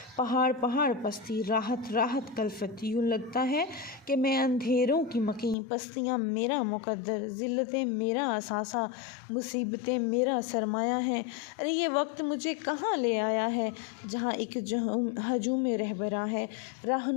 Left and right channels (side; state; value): right; drops out; at 5.6 s